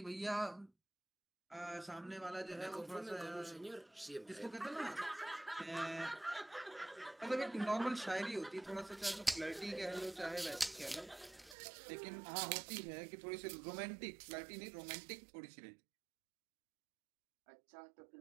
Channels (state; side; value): drops out; left; at 11.6 s